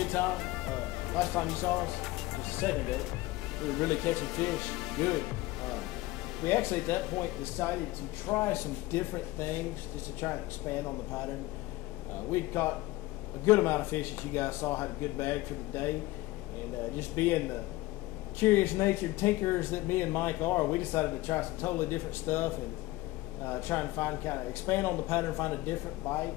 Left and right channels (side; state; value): right; quieter; 18.4 dB